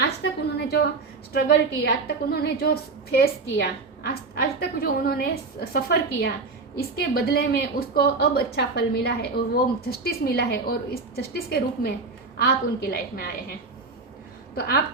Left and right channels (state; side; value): quieter; left; 4.0 dB